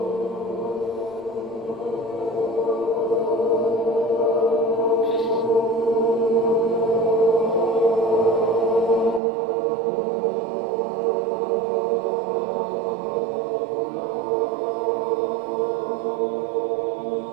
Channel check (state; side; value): drops out; left; at 9.2 s